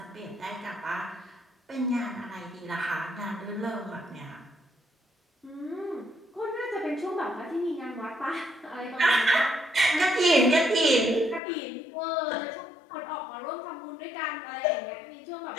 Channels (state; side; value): drops out; right; at 11.4 s